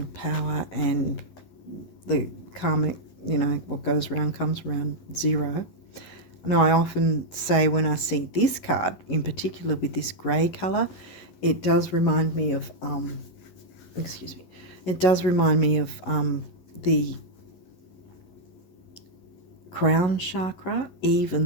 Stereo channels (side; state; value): right; late; 11 ms